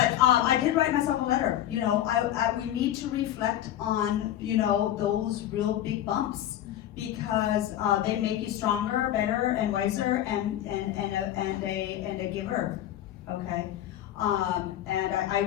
I did write myself a letter. We need to reflect on those real big bumps, because they make you stronger, better, and wiser, and a giver. Okay. And I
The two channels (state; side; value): quieter; right; 12.2 dB